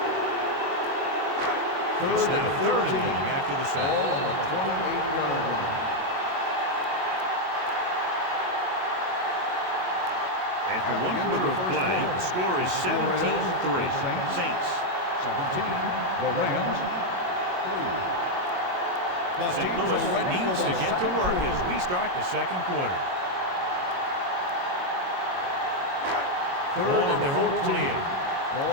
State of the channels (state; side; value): late; left; 22 ms